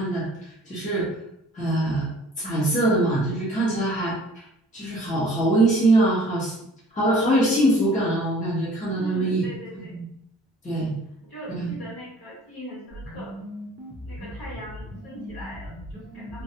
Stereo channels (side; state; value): both; normal; correlation 0.52